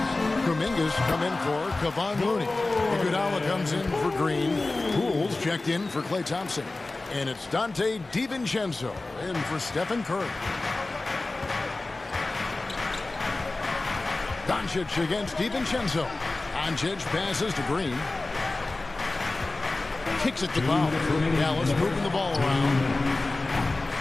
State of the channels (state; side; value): quieter; right; 3.2 dB